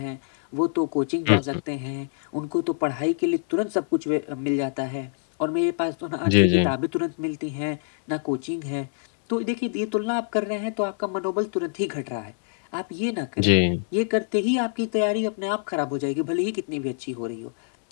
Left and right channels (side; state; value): right; silent; 62 dB below the other